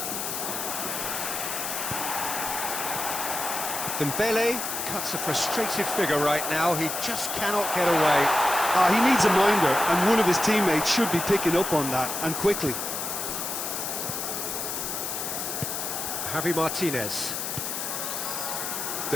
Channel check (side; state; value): left; noise; hiss, 4 dB below the sound